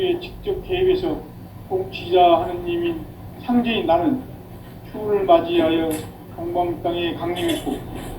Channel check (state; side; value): identical; both; correlation 1.00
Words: 직접 개입해서 통치자 하느님인 상제인 나는 추운을 맞이하여 동방 땅에 강림했고